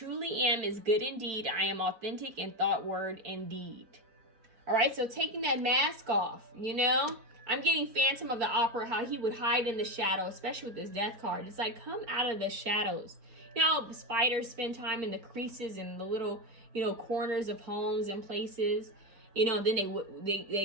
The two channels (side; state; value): left; late; 4.1 ms